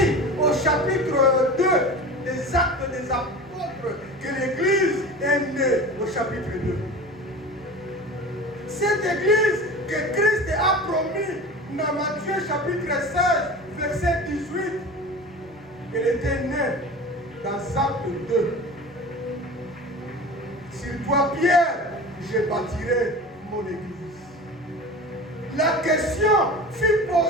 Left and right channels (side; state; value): both; normal; correlation 0.34